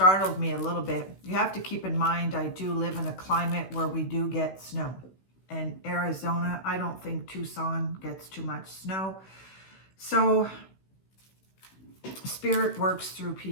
me a little bit. You have to keep in mind, I do live in a climate where we do get snow. And Arizona, I don't think Tucson gets too much snow. So spirit works through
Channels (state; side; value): late; right; 16 ms